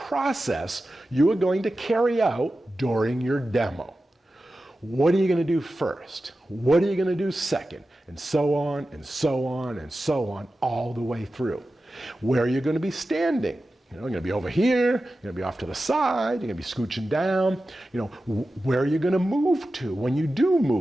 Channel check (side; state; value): both; normal; correlation 0.93